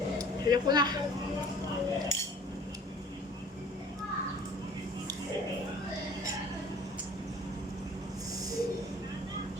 Hirap ko na.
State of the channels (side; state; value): both; normal; correlation 0.50